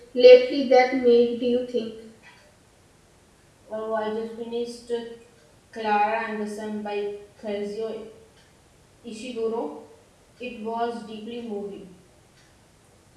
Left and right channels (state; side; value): identical; both; correlation 1.00